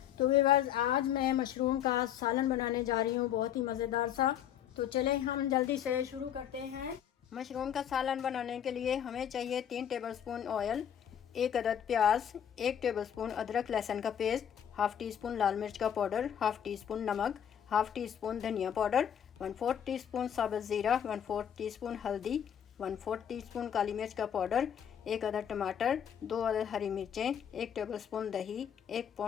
तो व्यूअर्स, आज मैं मशरूम का सालन बनाने जा रही हूँ, बहुत ही मज़ेदार सा। तो चलें हम जल्दी से शुरू करते हैं। मशरूम का सालन बनाने के लिए हमें चाहिए 3 टेबलस्पून ऑयल, 1 अदद प्याज, 1 टेबलस्पून अदरक लहसुन का पेस्ट, हाफ़ टी स्पून लाल मिर्च का पाउडर, हाफ़ टी स्पून नमक, हाफ़ टी स्पून धनिया पाउडर, 1/4 टीस्पून साबुत ज़ीरा, 1/4 टीस्पून हल्दी, 1/4 टीस्पून काली मिर्च का पाउडर, 1 अदद टमाटर, 2 अदद हरी मिर्चें, 1 टेबलस्पून दही, 1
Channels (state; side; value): quieter; right; 9.3 dB